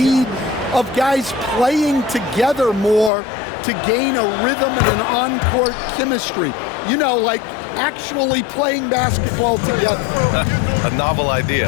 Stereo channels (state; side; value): drops out; right; at 3.1 s